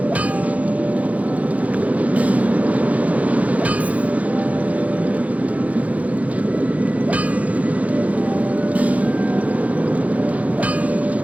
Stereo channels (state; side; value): late; left; 0.069 ms